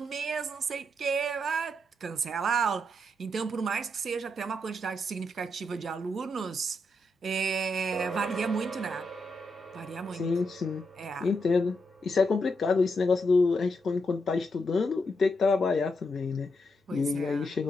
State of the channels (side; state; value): both; normal; correlation 0.82